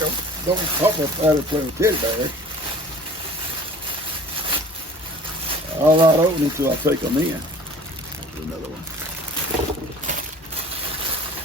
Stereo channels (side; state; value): both; normal; correlation 0.46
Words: don't Pawpaw out there playing with teddy bears. I'll not open it until I take them in. There's another one.